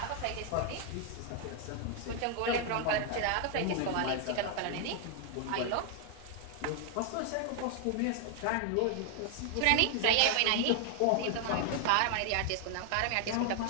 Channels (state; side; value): different; both; correlation 0.00